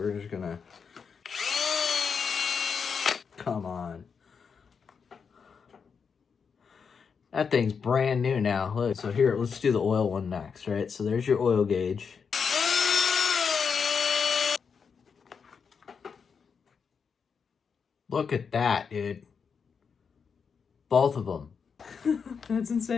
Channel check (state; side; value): quieter; right; 6.1 dB